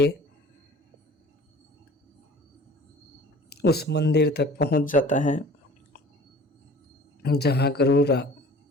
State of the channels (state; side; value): normal; both; correlation 0.46